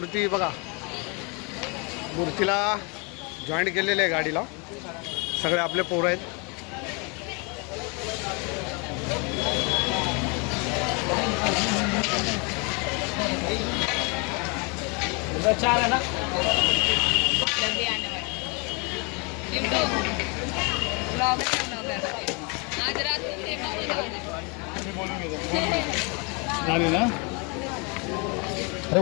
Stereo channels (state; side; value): quieter; right; 32.2 dB